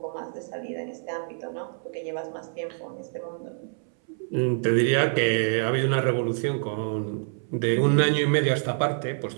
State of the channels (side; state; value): left; silent; 60 dB below the other